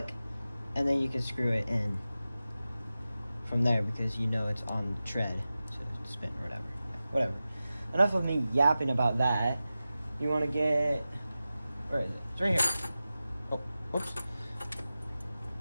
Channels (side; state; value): both; inverted; correlation -0.94